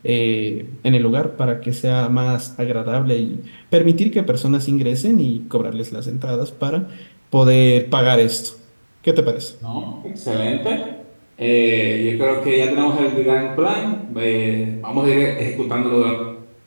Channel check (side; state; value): both; inverted; correlation -1.00